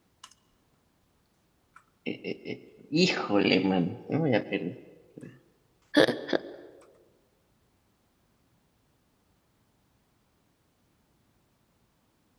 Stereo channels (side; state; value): both; identical; correlation 1.00